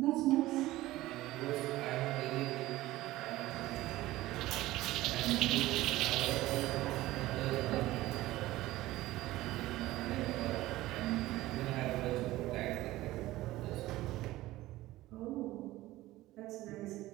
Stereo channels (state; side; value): quieter; left; 17.0 dB